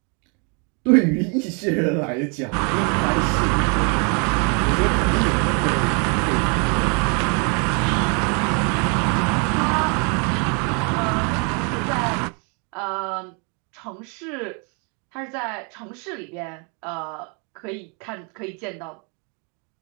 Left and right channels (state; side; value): quieter; left; 35.8 dB